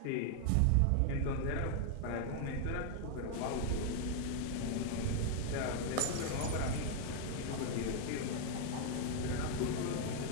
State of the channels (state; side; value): different; both; correlation 0.00